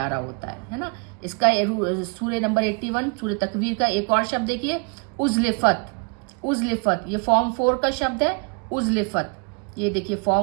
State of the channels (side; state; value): left; quieter; 36.3 dB